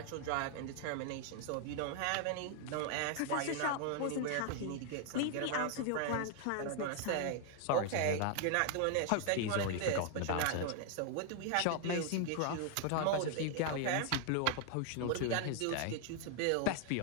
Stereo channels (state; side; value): different; both; correlation 0.00